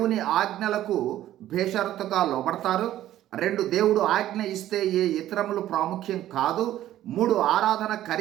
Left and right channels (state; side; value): quieter; left; 13.2 dB